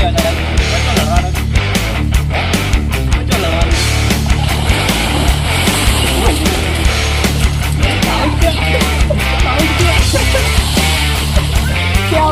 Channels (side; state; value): both; identical; correlation 1.00